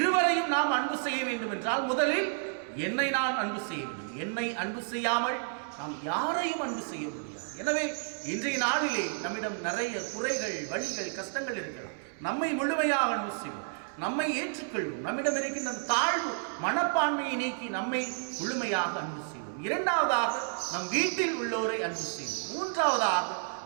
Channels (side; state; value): left; silent; 57 dB below the other